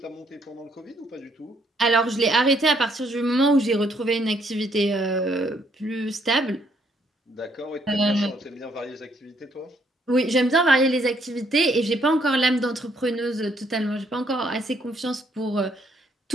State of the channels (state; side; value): normal; both; correlation 0.70